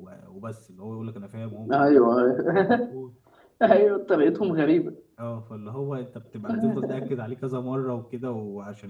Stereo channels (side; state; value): both; identical; correlation 1.00